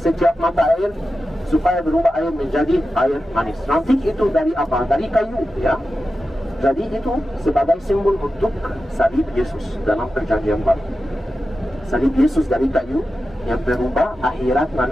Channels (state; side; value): normal; both; correlation 0.92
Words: mata air supaya berubah air menjadi air manis. Ranting itu dari apa? Dari kayu, ya. Jadi itu sebagai simbol untuk salib Yesus dalam perjanjian baru. Salib Yesus dari kayu yang berubah akhirat